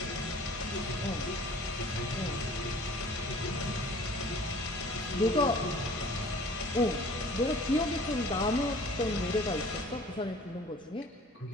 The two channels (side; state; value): both; normal; correlation 0.49